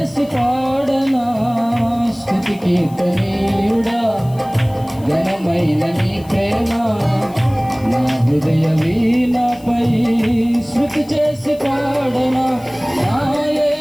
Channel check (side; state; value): left; noise; hiss, 24 dB below the sound